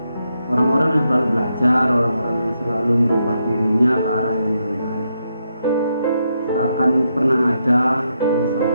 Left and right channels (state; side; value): inverted; both; correlation -0.81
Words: orang-orang yang selalu belajar, orang-orang yang selalu merubah dirinya ke arah yang lebih baik. Tak akan pernah ada